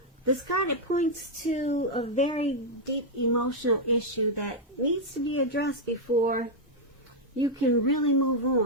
This card, it points to a very deep emotional issue that needs to be addressed before you can really move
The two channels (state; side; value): normal; both; correlation -0.02